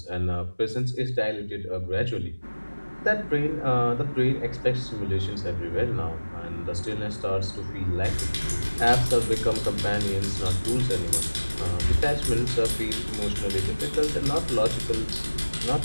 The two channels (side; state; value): both; inverted; correlation -1.00